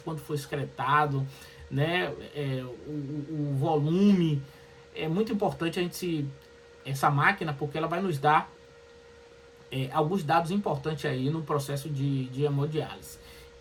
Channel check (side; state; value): both; identical; correlation 1.00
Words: quanto foi excretado, né, o volume. É muito importante a gente essa máquina, porque ela vai nos dar alguns dados importantes aí no processo de hemodiálise.